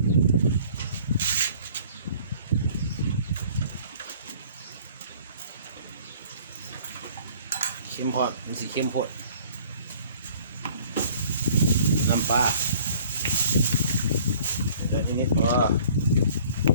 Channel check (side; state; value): both; inverted; correlation -0.53